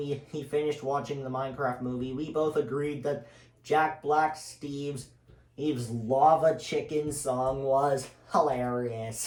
finished watching the Minecraft movie, we both agreed that Jack Black Steve's Lava Chicken song was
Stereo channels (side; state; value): both; identical; correlation 1.00